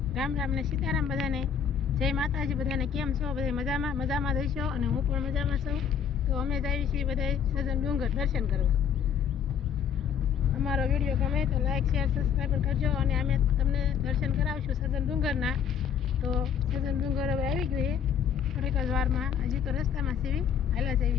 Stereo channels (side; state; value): right; quieter; 7.8 dB